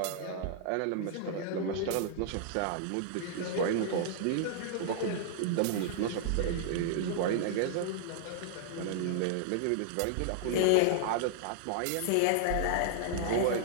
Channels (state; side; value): different; both; correlation -0.01